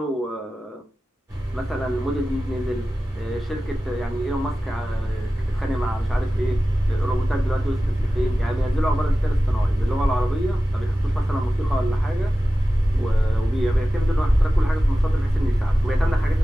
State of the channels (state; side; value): normal; both; correlation 0.95